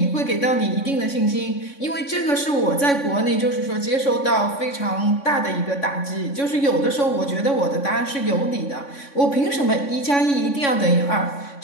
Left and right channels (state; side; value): late; right; 3.6 ms